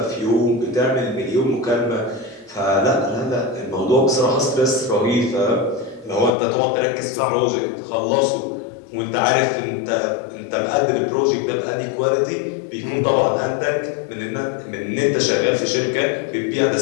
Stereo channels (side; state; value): right; drops out; at 6.4 s